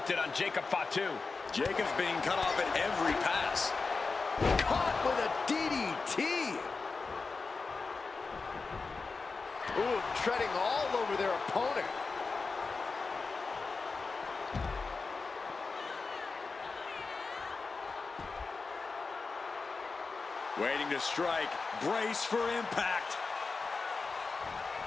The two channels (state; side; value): quieter; right; 4.3 dB